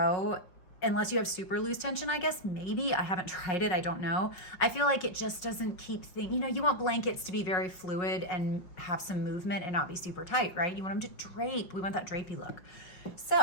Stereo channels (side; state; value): right; late; 5.5 ms